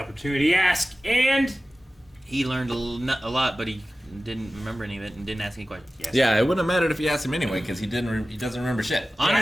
to ask, and he learned a lot, but he didn't remember any of it and didn't ask any questions. yes. Yeah, it wouldn't have mattered if you asked him anyway, because he doesn't remember shit.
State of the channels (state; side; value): normal; both; correlation 0.95